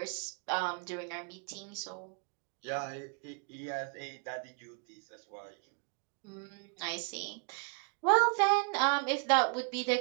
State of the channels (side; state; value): left; quieter; 35.0 dB